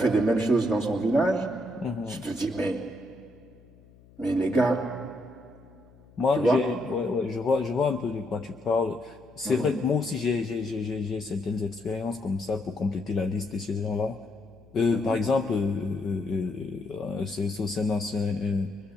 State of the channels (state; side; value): noise; left; hum, 25 dB below the sound